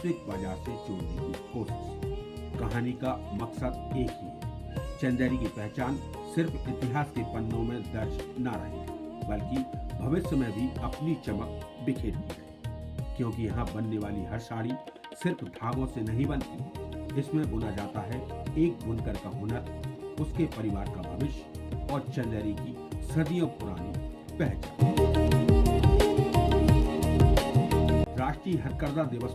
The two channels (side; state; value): both; identical; correlation 1.00